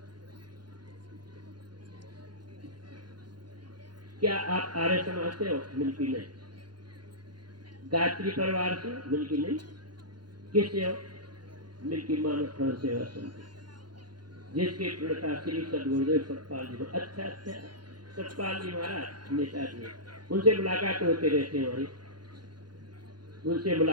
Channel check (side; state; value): left; late; 0.71 ms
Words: क्या आप आर्य समाज से हो? मिलकी नहीं। गायत्री परिवार से? मिलकी नहीं। किससे हो? मिलकी मानव प्राण सेवा समिति, जिसके प्रणेता श्री सदगुरुदेव सतपाल जी। अच्छा अच्छा, सतपाल जी महाराज नेताजी, उनसे मुलाकात होते रहते हैं हमारी, उनसे